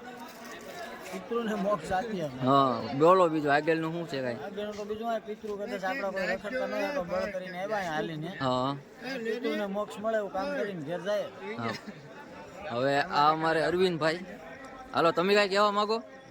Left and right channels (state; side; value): identical; both; correlation 1.00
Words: પિતૃને મોક્ષ આપીએ. હા, બોલો બીજું આગળનું શું છે કાંઈ? આગળનું તો બીજું આ પિતૃ કદાચ આપણા કોઈ રખડતા નહીં તો બળ કરીને આવ્યા હાલીને. હા, પિતૃને મોક્ષ મળે એવું કામ કરીને ઘેર જાય. હા. હવે આ અમારે અરવિંદભાઈ, હાલો તમે કાંઈ કહેવા માંગો?